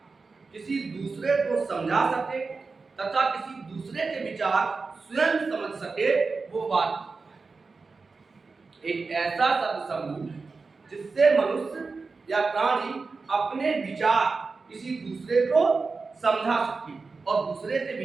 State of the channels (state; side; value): quieter; left; 4.2 dB